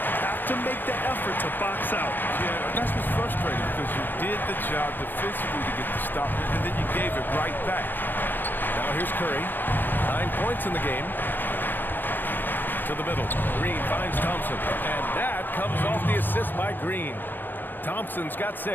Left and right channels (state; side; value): late; right; 0.092 ms